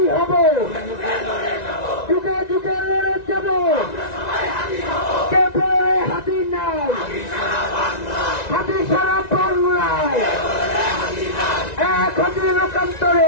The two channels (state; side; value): late; right; 1.9 ms